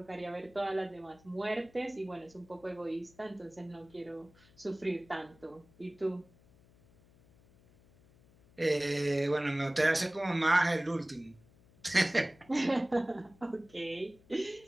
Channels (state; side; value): noise; left; hum, 28 dB below the sound